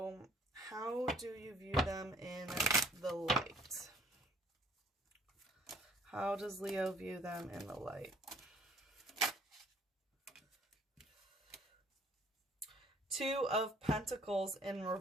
how do you view them in the light? How does Leo view them in the light? Two of Pentacles in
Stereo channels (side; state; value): both; normal; correlation 0.59